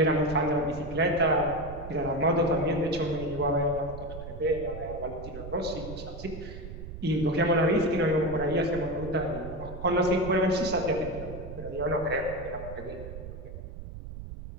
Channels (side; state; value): right; noise; rumble, 11 dB below the sound